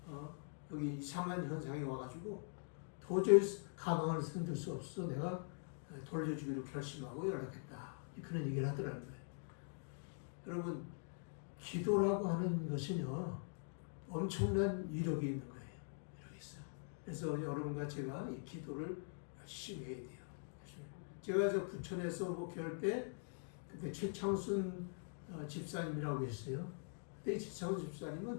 여기 이상한 현상이 와가지고 도저히 가방을 흔들 수 없어 내가 돌려주기로 결심하고 연락했다. 그런 얘기를 하더라는 거예요. 여러분 기도라고 하는 것은요 엄청난 위력이 있는 거예요. 이렇게 있어요. 그래서 여러분과 제가 이 기도를 열심히 해야 돼요. 제가 저 부천에서 목회할 때 그때 최창순 집사님이라고 했어요. 그때 최창순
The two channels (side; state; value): right; silent; digital silence